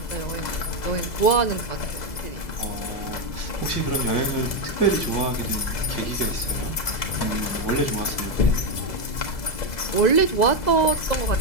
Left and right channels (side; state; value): right; late; 2.0 ms